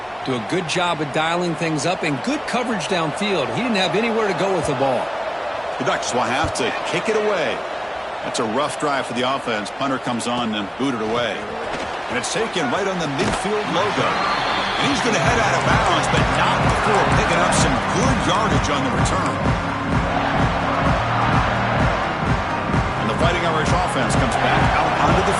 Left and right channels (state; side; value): identical; both; correlation 1.00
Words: Do a good job of dialing things up and good coverage downfield. He didn't have anywhere to go with the ball. The Ducks will have to kick it away. That's a rough drive for the offense. Punter comes on and booted away. And it's taken right on the midfield logo. And he's going to head out of bounds, but not before picking up some good yardage on the return. And the Fighting Irish offense comes back out onto the